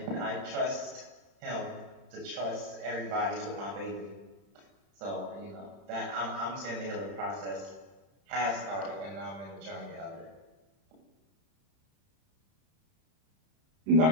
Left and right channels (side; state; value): left; late; 31 ms